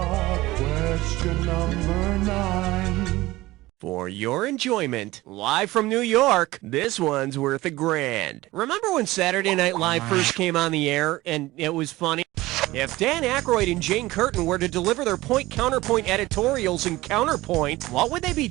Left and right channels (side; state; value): left; quieter; 18.6 dB